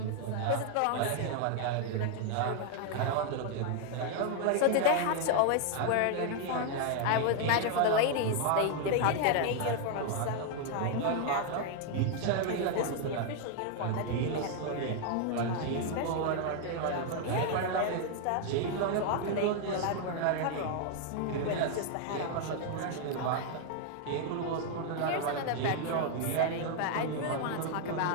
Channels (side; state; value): both; different; correlation 0.00